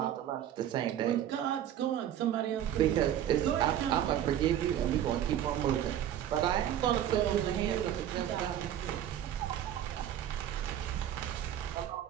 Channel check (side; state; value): left; quieter; 10.9 dB